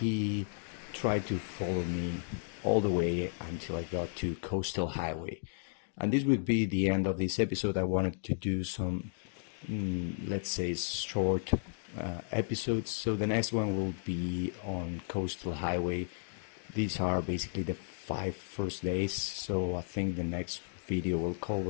tried to follow me all the way until I got to Coastal Highway. And this would be the end of this episode. I wanted to do some, let's say, short episodes. So the next one will be on Coastal Highway. These are basically the 5 first days. So I think the next video will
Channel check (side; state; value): right; silent; digital silence